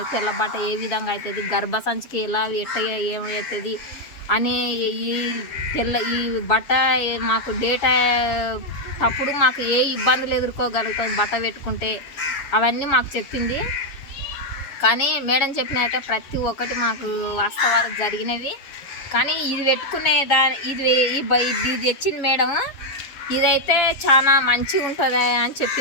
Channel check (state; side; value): late; right; 7.1 ms